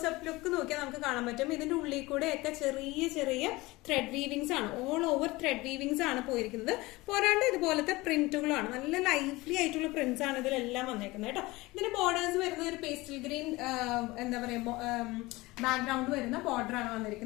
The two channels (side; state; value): right; quieter; 21.1 dB